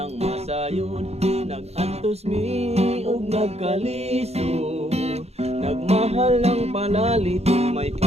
masayod nagantos mi og nagkaliso nagmahal ng palalit may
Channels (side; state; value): left; late; 0.30 ms